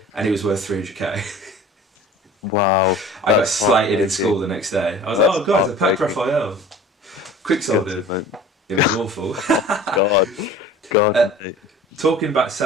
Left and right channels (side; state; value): both; normal; correlation 0.43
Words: And he was worth 300k. Wow. I got slated in school the next day. I was like, oh guys, I packed Raphael. Quick sold him. It was awful. God. Talking about